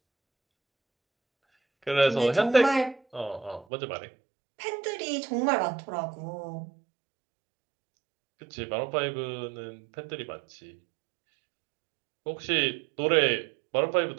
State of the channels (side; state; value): left; drops out; at 3.7 s